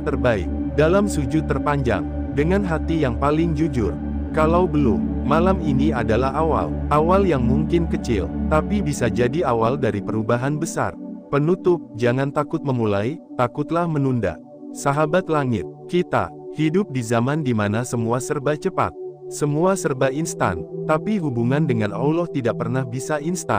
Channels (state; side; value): identical; both; correlation 1.00